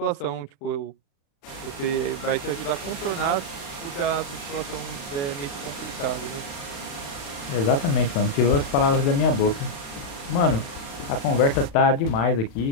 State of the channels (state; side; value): late; right; 36 ms